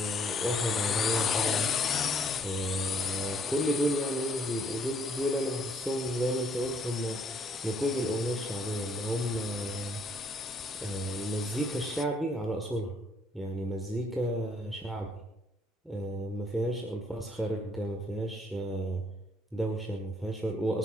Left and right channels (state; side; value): normal; both; correlation 0.66